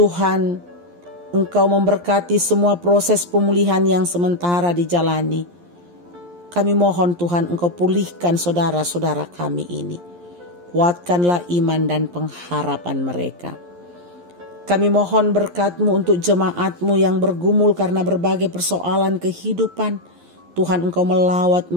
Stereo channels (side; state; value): left; late; 11 ms